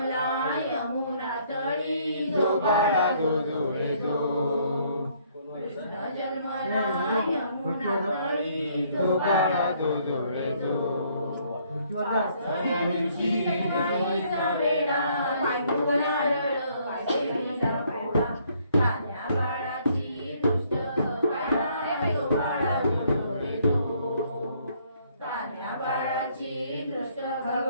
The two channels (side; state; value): both; inverted; correlation -0.65